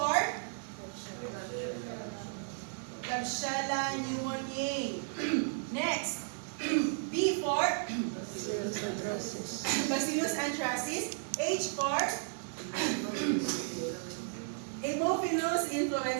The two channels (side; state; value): left; silent; digital silence